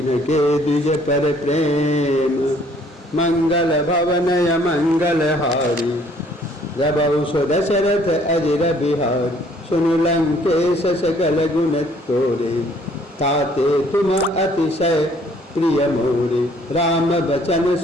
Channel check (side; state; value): both; normal; correlation 0.61